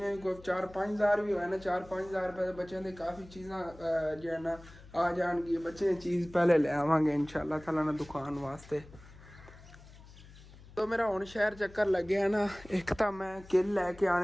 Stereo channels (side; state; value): left; noise; hum, 20 dB below the sound